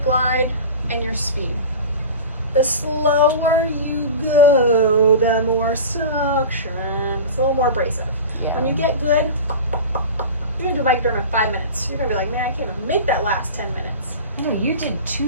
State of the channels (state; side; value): inverted; both; correlation -0.33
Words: glide, and your speed. The slower you go, the more suction. It's a little more abrasive. Yeah. When you get good, you're gonna do Microderm in 5 minutes. You're gonna be like, man, I can't even make that last 10 minutes. No, you did